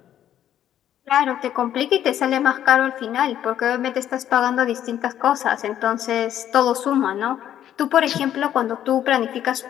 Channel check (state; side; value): quieter; right; 10.9 dB